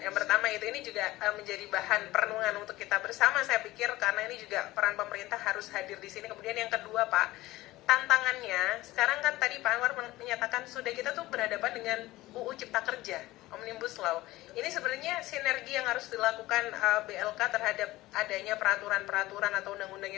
pertama itu ini juga menjadi bahan perenungan untuk kita bersama saya pikir, karena ini juga peran pemerintah harus hadir di sini. Kemudian yang kedua Pak, tantangannya sekarang kan tadi Pak Anwar menyatakan sudah kita tuh berhadapan dengan UU Cipta Kerja, Omnibus Law. Ini sebenarnya sinergi yang harus dilakukan BLK terhadap adanya peraturan-peraturan atau undang-undang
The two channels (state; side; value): quieter; right; 17.9 dB